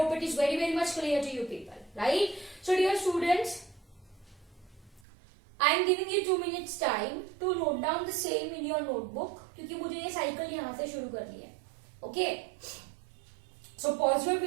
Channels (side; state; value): left; drops out; at 5.0 s